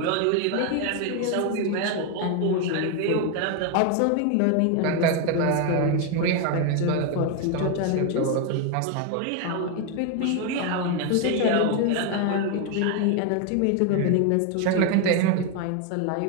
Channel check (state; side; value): different; both; correlation 0.01